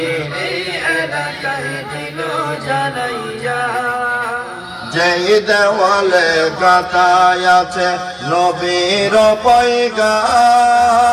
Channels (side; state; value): both; identical; correlation 1.00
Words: এই এলাকায় দিল জ্বালাইয়া যেই দেওয়ালে গাথায় আছে নবীর